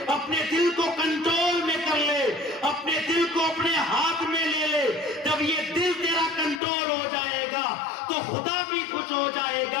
اپنے دل کو کنٹرول میں کر لے، اپنے دل کو اپنے ہاتھ میں لے لے۔ جب یہ دل تیرا کنٹرول ہو جائے گا تو خدا بھی خوش ہو جائے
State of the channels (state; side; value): drops out; right; at 6.6 s